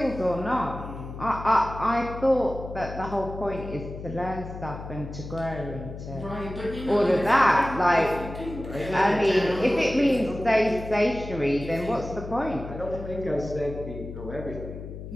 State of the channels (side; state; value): left; noise; hum, 10 dB below the sound